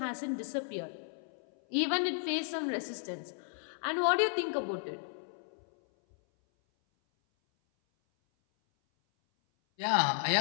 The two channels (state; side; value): silent; right; 55 dB below the other